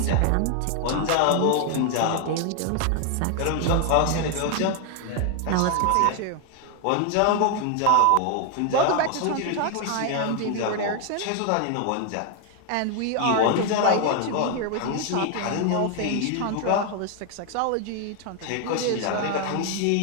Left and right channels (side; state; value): both; different; correlation 0.00